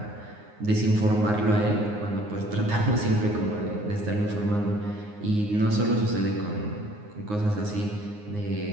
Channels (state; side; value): late; left; 9.6 ms